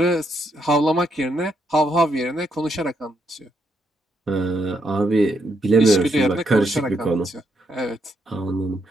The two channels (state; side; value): normal; both; correlation 0.77